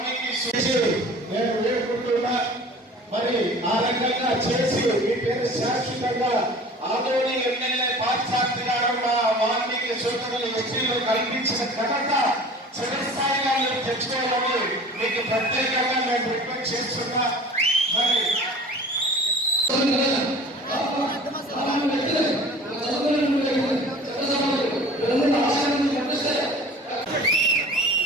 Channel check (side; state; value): both; normal; correlation 0.43